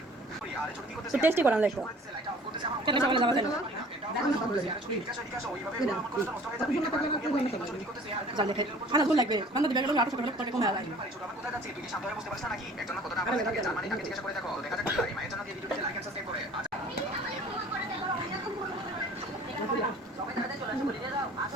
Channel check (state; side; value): normal; both; correlation 0.49